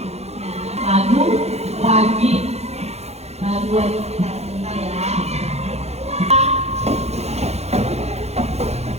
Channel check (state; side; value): late; left; 0.31 ms